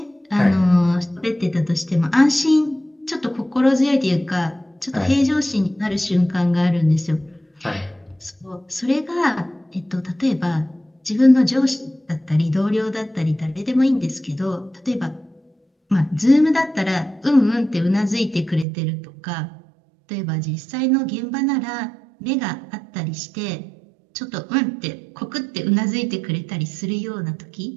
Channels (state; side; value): drops out; left; at 18.7 s